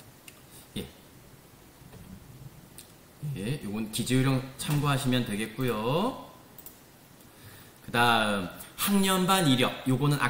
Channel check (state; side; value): identical; both; correlation 1.00